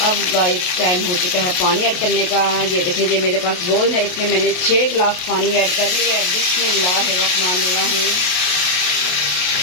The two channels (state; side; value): late; right; 28 ms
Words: गाइस टाइम हो चुका है पानी ऐड करने का। ये देखिए ये मेरे पास बोल है, इसमें मैंने 6 गिलास पानी ऐड कर लिया है। बिस्मिल्लाहिर्रहमानिर्रहीम।